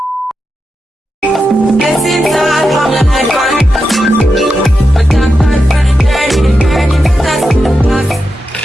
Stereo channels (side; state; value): both; normal; correlation 0.88